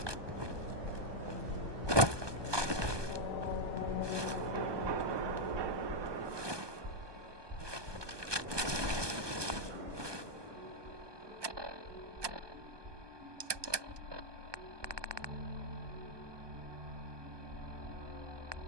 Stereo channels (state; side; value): late; left; 1.2 ms